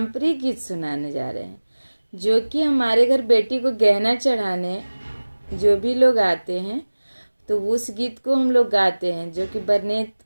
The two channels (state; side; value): inverted; both; correlation -1.00